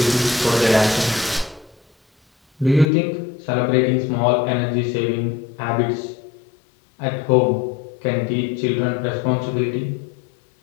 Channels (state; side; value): drops out; right; at 2.9 s